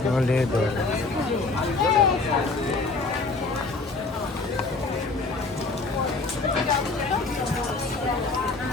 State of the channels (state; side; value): quieter; right; 3.7 dB